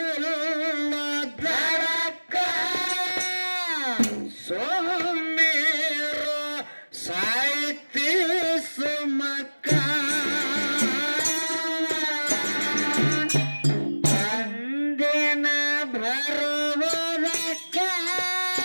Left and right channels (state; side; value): inverted; both; correlation -1.00